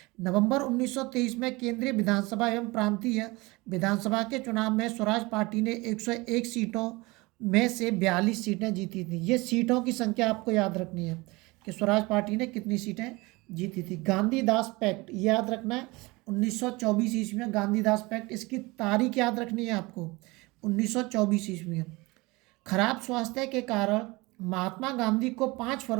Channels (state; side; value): quieter; left; 23.5 dB